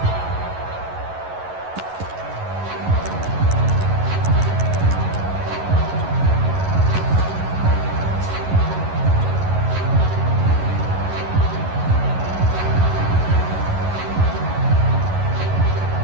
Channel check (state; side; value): late; left; 11 ms